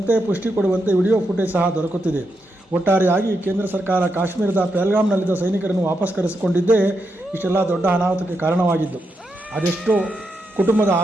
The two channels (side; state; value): both; normal; correlation 0.84